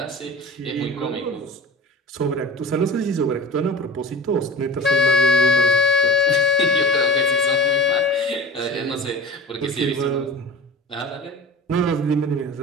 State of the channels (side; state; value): both; normal; correlation 0.36